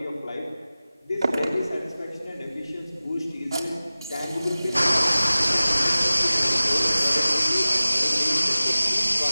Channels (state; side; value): inverted; both; correlation -0.97